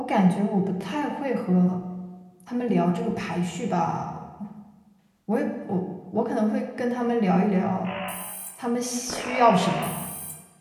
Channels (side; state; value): both; identical; correlation 1.00